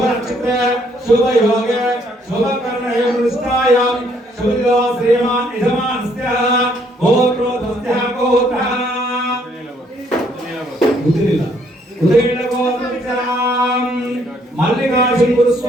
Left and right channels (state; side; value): normal; both; correlation 0.67